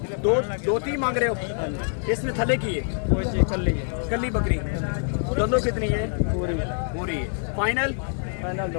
2-3 मांग रहे हो? इसमें थले की है? कल्ली बकरी। दोनों कितनी है? पूरी। फाइनल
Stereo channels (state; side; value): silent; right; 62 dB below the other